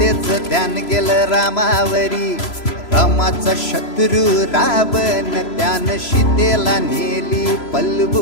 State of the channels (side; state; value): right; late; 3.0 ms